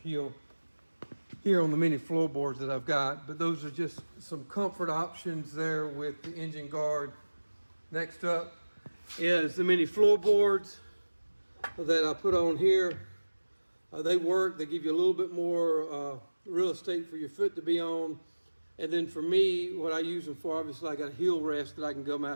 here on the mini floorboards that I've got. But those are just some comfort options there with the engine guard. Next up is the mini floorboards that I put on here. They work, they give you a little bit more real estate for your foot to be on. And then for me, what I use them for, obviously I got a heel rest that I can come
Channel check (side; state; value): both; inverted; correlation -1.00